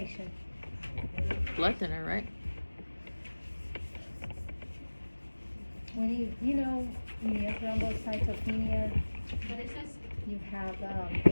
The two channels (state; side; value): inverted; both; correlation -1.00